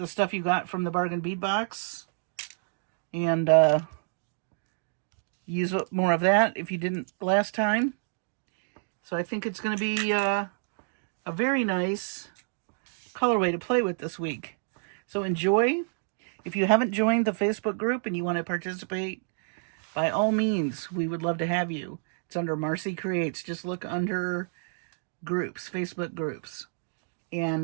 stuff you got from the bargain bead box and use more of that if you didn't last time. So I think it's going to be a very nice colorway to play with this week. So enjoy. If you haven't joined the Facebook group and you want to participate, by all means, we would love to have you. It's under Marcie Creates. Just look under groups, Facebook groups,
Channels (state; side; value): silent; left; digital silence